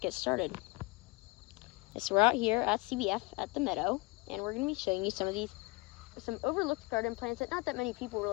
started. So we're out here at CBF at the meadow, and we're going to be showing you some overlooked garden plants that not that many people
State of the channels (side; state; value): right; quieter; 24.8 dB